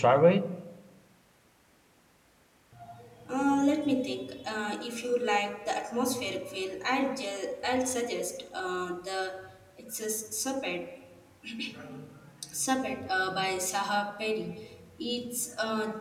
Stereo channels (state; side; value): identical; both; correlation 1.00